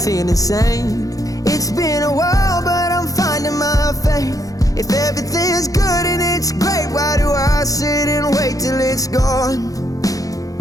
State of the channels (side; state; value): right; late; 0.17 ms